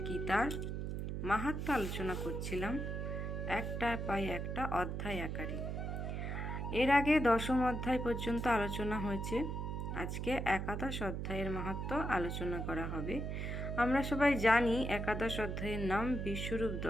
গীতার মাহাত্ম্য আলোচনা করছিলাম, একটা পাই একটা অধ্যায় আকারে। এর আগে 10ম অধ্যায় পর্যন্ত আলোচনা হয়েছে। আজকে একাদশ অধ্যায়ের মাহাত্ম্য আলোচনা করা হবে। আমরা সবাই জানি একাদশ অধ্যায়ের নাম বিশ্বরূপ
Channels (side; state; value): right; noise; hum, 3 dB below the sound